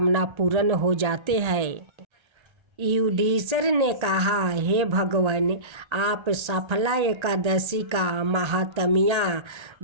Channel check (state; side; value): late; left; 1.3 ms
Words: पूर्ण हो जाते हैं। युधिष्ठिर ने कहा, हे भगवान, आप सफला एकादशी का महात्म्य